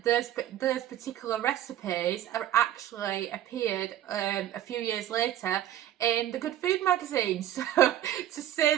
those particular recipes are actually appeared a few years later in the Good Food magazine. So to say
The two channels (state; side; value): quieter; left; 12.0 dB